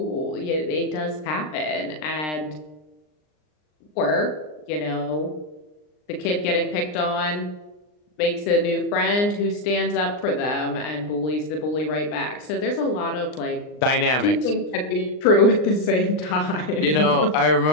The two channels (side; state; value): right; late; 39 ms